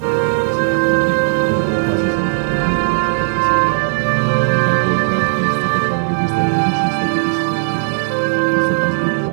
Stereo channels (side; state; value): left; silent; 59 dB below the other